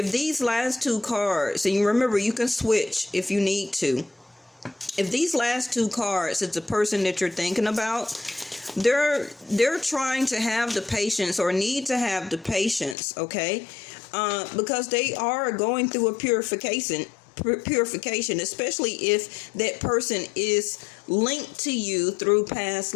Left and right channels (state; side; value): drops out; right; at 13.0 s